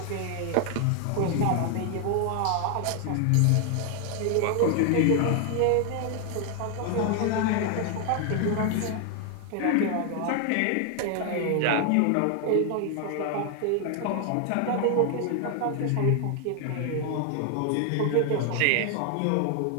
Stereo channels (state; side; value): different; both; correlation 0.00